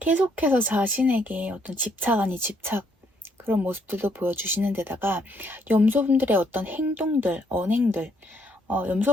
자신에게 어떤 집착 아닌 집착 그런 모습들도 보여주시는 데다가 염소 분들의 어떤 행동들, 언행들,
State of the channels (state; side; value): normal; both; correlation 0.71